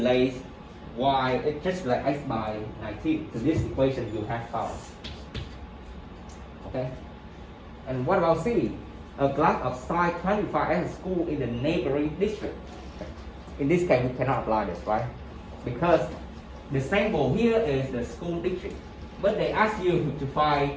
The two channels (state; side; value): identical; both; correlation 1.00